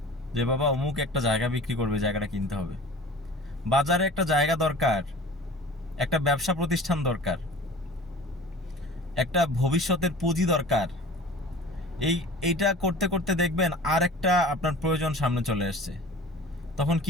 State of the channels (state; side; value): normal; both; correlation 0.42